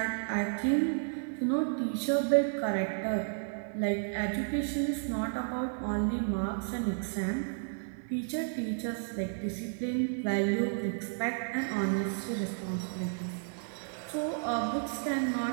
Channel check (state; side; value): silent; left; 56 dB below the other